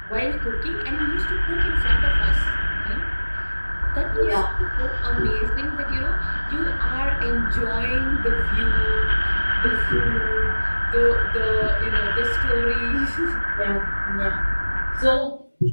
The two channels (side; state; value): both; inverted; correlation -1.00